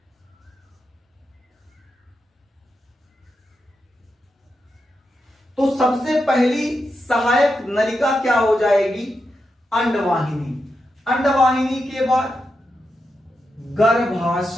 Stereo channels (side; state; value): both; normal; correlation 0.87